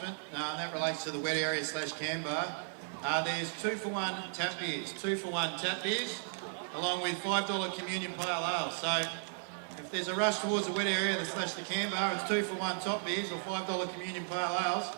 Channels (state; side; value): silent; left; digital silence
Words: That relates to the wet area / can bar. There's 2-for-1 tap beers, 2-for-1 tap beers, along with $5 communion pale ale. So if there's a rush towards the wet area / the can bar, it's 2-for-1 top beers or $5 communion pale ales.